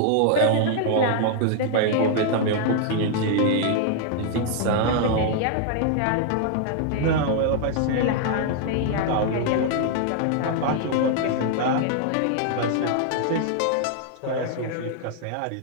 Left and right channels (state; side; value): different; both; correlation 0.00